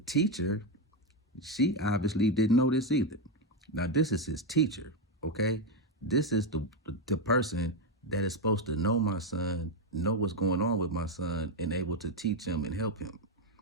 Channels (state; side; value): normal; both; correlation 0.07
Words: she obviously didn't know this either. Now, this is his teacher, okay? This is the person that is supposed to know my son, know what's going on with my son, and able to teach him and help him.